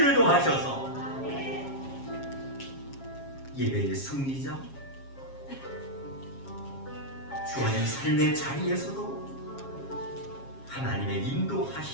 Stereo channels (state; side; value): late; right; 7.3 ms